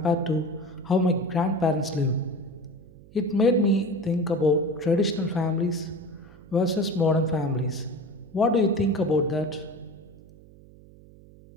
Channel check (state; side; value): noise; right; hum, 22 dB below the sound